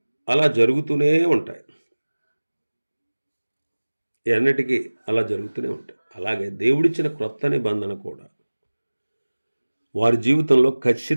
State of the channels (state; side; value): inverted; both; correlation -1.00